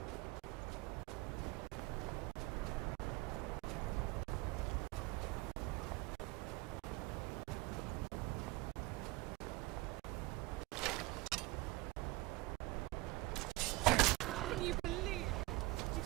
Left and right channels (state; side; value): quieter; left; 21.7 dB